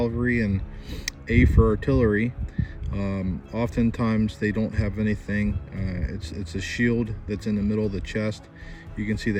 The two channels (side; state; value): both; identical; correlation 1.00